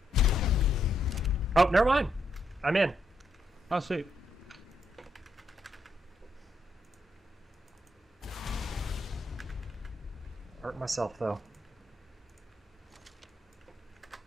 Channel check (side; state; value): both; normal; correlation 0.78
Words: bud. here. Oh, never mind. I'm in. Oh, sweet. Hurt myself though.